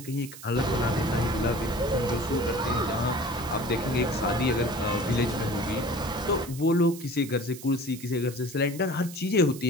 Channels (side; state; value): right; noise; hiss, 15 dB below the sound